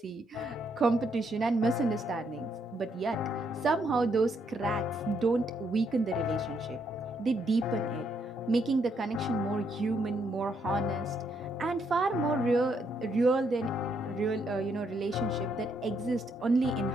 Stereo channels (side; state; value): both; normal; correlation 0.74